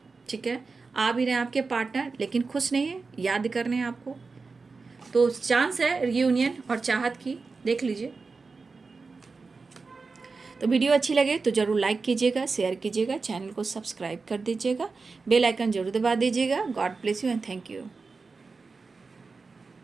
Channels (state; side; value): quieter; left; 4.3 dB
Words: ठीक है। आ भी रहे हैं आपके पार्टनर, लेकिन खुश नहीं है, याद कर रहे हैं आपको। तो चांस है रीयूनियन और चाहत की, देख लीजिए। तो वीडियो अच्छी लगे तो ज़रूर लाइक कीजिएगा, शेयर कीजिएगा, चैनल को सब्सक्राइब कर दीजिएगा, बेल आइकन जरूर दबा दीजिएगा। God bless you and thank you.